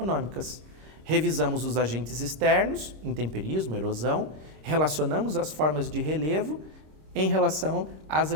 Revisamos os agentes externos, intemperismo, erosão, relacionamos as formas de relevo em relação às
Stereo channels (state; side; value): late; left; 26 ms